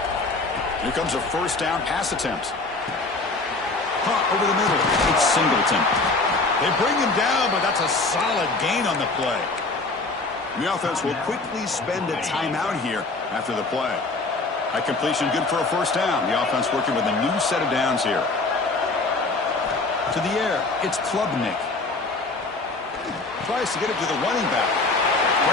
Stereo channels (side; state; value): right; quieter; 3.4 dB